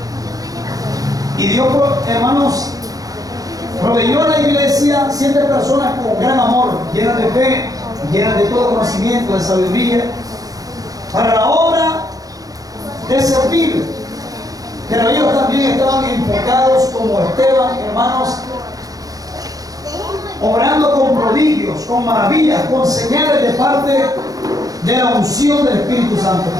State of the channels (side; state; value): left; late; 0.17 ms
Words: Y Dios, hermanos, proveyó a la iglesia 7 personas con gran amor, llenas de fe, llenas de todo conocimiento, de sabiduría, para la obra de servir. Pero ellos también estaban enfocados como Esteban, hermanos, obrando con prodigios, con maravillas, con señales de parte de la unción del Espíritu Santo.